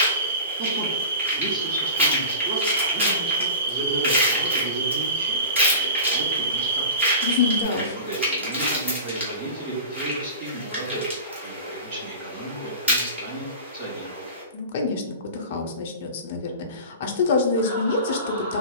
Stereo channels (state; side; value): inverted; both; correlation -0.34